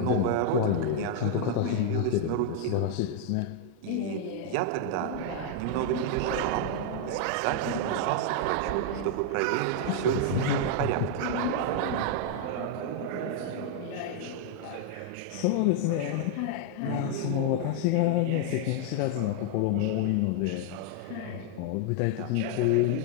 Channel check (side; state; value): both; different; correlation 0.00